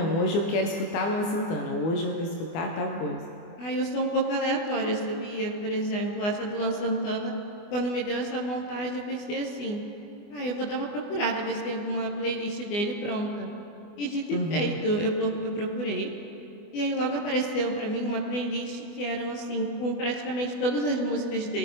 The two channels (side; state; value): right; late; 24 ms